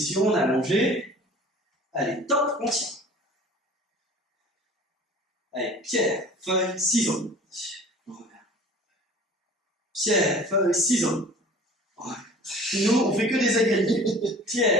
allongée. Allez, top, on tient. Allez, pierre, feuille, ciseaux. Pierre, feuille, ciseaux. Nous, on fait que des égalités.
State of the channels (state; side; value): normal; both; correlation 0.44